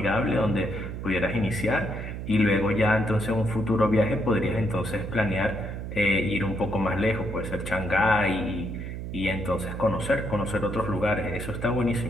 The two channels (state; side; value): noise; right; hum, 7 dB below the sound